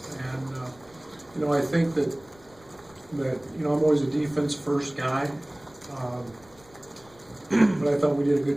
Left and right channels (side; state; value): left; noise; rumble, 27 dB below the sound